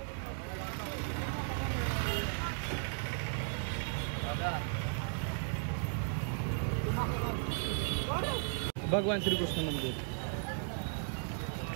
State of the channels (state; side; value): silent; left; 54 dB below the other